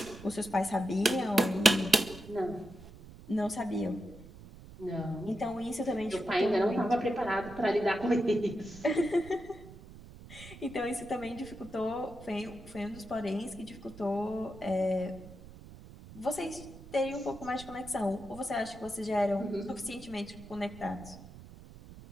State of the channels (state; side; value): noise; right; rumble, 17 dB below the sound